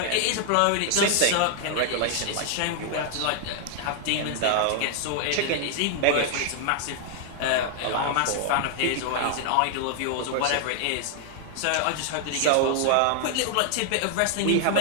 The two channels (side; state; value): both; different; correlation 0.00